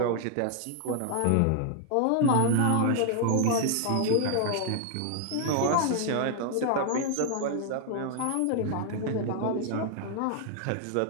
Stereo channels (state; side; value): different; both; correlation 0.00